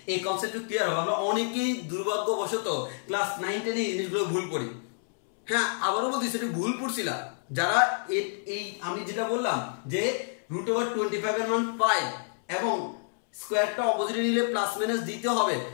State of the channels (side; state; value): right; silent; 59 dB below the other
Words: এই কনসেপ্টটা ক্লিয়ার হবে। আমরা অনেকেই দুর্ভাগ্যবশত ক্লাস 9 10 এই জিনিসগুলো ভুল পড়ি। হ্যাঁ আবারও বলছি সেটা ভুল পড়ছিলা যারা এই আমি যেটা বললাম যে √25 এর মান 5 এবং স্কয়ারটা অপোজিটে নিলে প্লাস মাইনাস দিতে হবে,